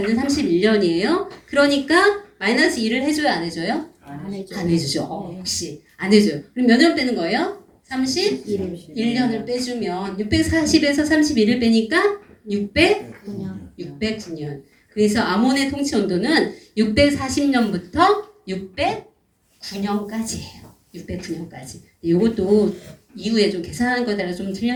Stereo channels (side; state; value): both; identical; correlation 1.00